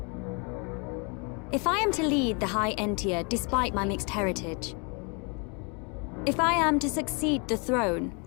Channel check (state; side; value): quieter; right; 33.8 dB